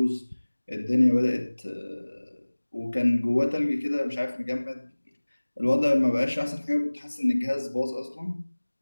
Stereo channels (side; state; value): both; inverted; correlation -1.00